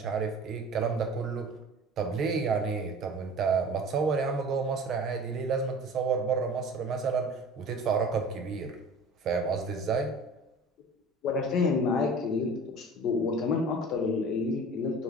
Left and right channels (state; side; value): normal; both; correlation 0.41